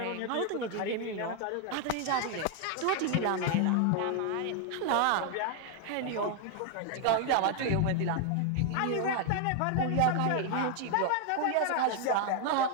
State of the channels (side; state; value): both; different; correlation 0.00